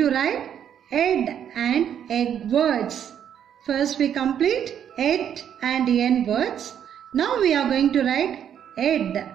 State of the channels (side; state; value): left; quieter; 9.2 dB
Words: write ed and egg words. First we complete ed and n words. Now we are going to write ed,